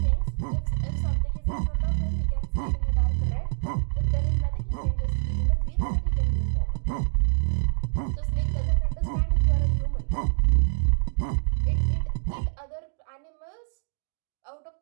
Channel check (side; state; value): left; silent; digital silence